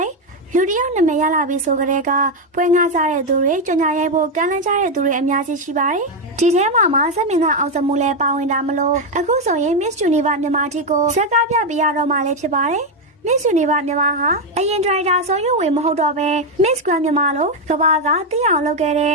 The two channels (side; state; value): both; normal; correlation 0.05